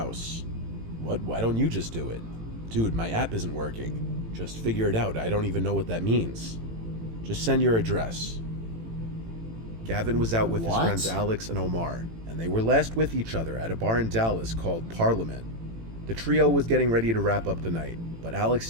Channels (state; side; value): late; left; 18 ms